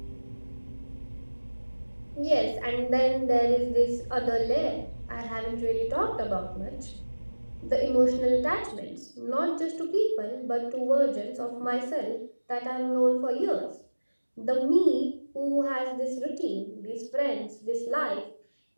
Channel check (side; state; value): both; inverted; correlation -1.00